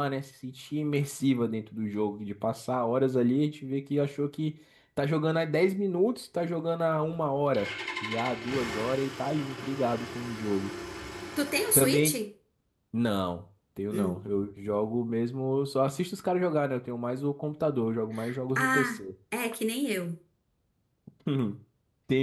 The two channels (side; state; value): both; identical; correlation 1.00